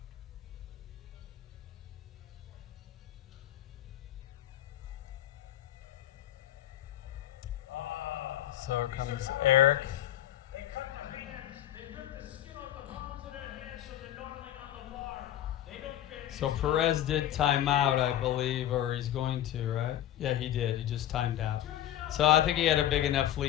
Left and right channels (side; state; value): right; quieter; 12.3 dB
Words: So here comes Eric. They cut their hands. They rip the skin off the palms of their hands so they're gnarling on the bar. They don't fit. So Perez did time out, I believe, or he's going to, right? Yeah, he did. He just timed out. So I think he had a big enough